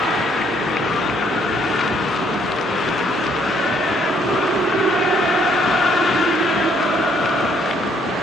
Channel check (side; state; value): both; normal; correlation 0.67